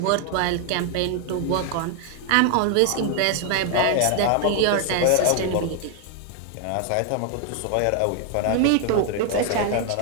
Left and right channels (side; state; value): both; different; correlation 0.00